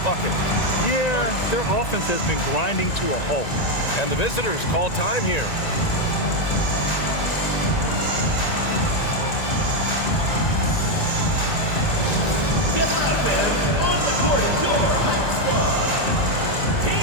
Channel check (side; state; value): right; late; 1.9 ms